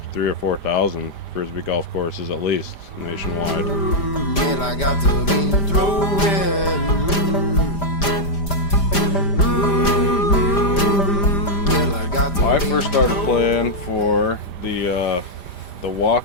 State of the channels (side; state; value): right; late; 5.0 ms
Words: or 4,000 Frisbee golf courses at least nationwide. And I got to be throwing. I first started playing for the